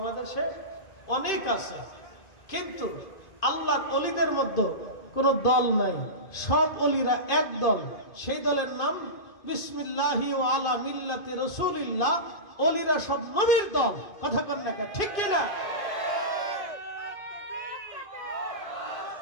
অনেক আছে। কিন্তু আল্লাহর ওলিদের মধ্যে কোনো দল নাই, সব ওলিরা এক দল। সেই দলের নাম বিসমিল্লাহি ওয়া আলা মিল্লাতি রাসূলিল্লাহ। ওলিরা সব নবীর দল। কথা কন না, ঠিক কিনা?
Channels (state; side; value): late; right; 2.5 ms